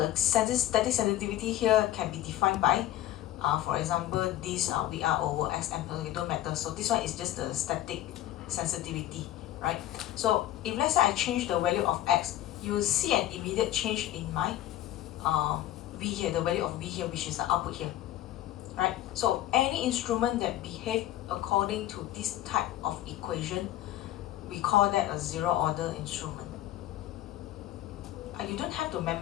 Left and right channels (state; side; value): quieter; right; 13.7 dB